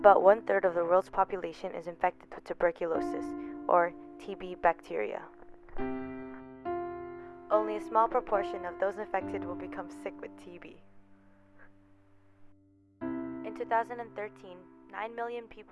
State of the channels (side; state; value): both; identical; correlation 1.00